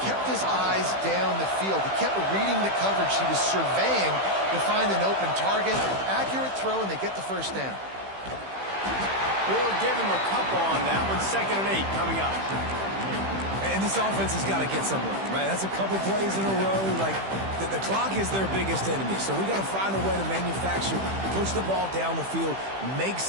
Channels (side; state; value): left; late; 15 ms